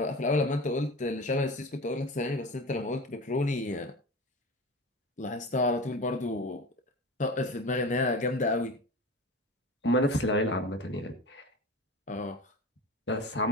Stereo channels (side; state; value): both; normal; correlation 0.31